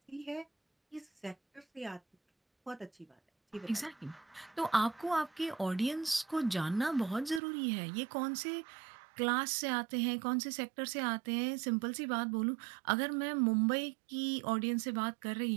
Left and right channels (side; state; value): left; drops out; at 7.4 s